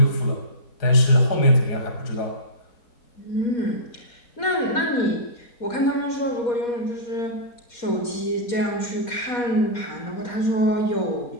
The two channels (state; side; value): late; right; 4.2 ms